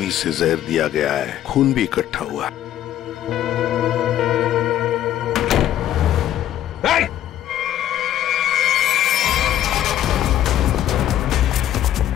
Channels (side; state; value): right; quieter; 11.9 dB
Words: से जहर दिया गया है, खून भी इकट्ठा हुआ।